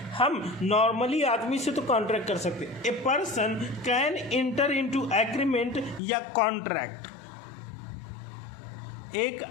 हम नॉर्मली आदमी से तो कॉन्ट्रैक्ट कर सकते। A person can inter into agreement या कॉन्ट्रैक्ट। एक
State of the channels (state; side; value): drops out; right; at 6.0 s